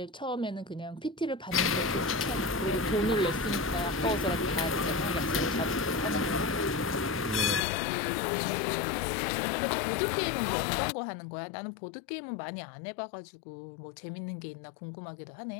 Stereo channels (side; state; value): right; drops out; at 7.6 s